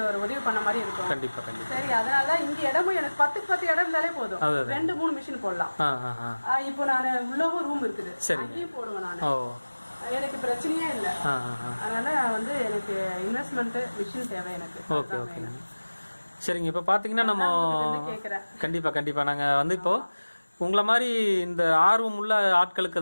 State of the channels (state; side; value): inverted; both; correlation -1.00